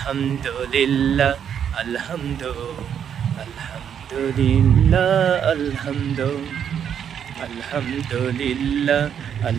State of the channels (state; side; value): quieter; left; 8.5 dB